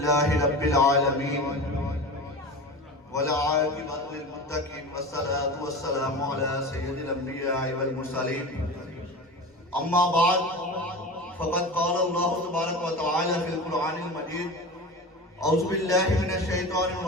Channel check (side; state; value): both; normal; correlation 0.30